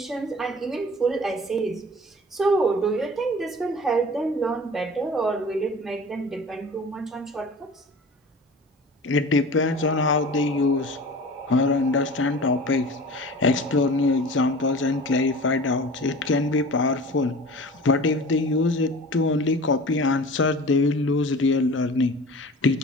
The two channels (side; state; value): both; normal; correlation 0.39